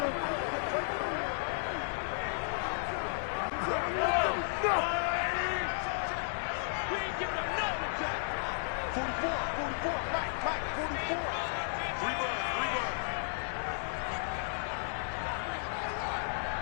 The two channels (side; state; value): right; silent; digital silence